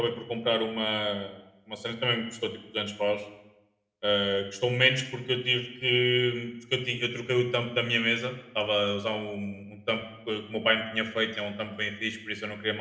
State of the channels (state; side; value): identical; both; correlation 1.00